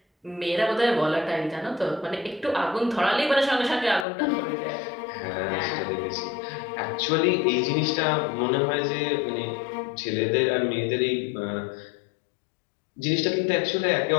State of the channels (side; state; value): right; drops out; at 4.0 s